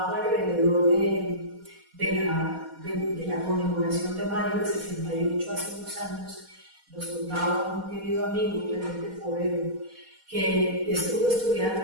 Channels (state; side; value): late; left; 4.2 ms